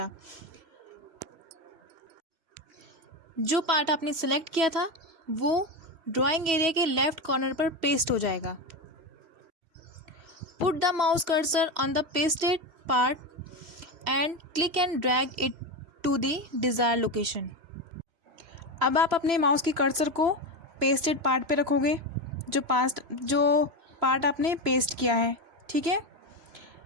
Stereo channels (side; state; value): left; late; 3.0 ms